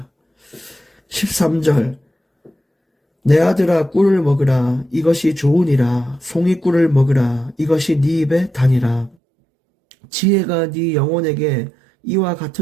13절 내 아들아 꿀을 먹으라 이것이 좋으니라 송이꿀을 먹으라 이것이 네 입에 다니라 지혜가 네 영혼에게 이와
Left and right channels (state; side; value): drops out; left; at 9.2 s